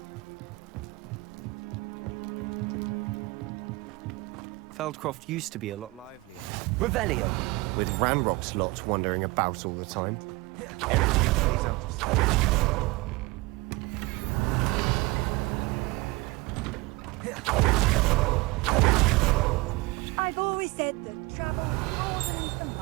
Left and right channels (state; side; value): quieter; left; 22.9 dB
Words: Feldcroft used to be a lot livelier. Revelio! With Ranrock's lot wandering about all the time. I've always said that travel broadens the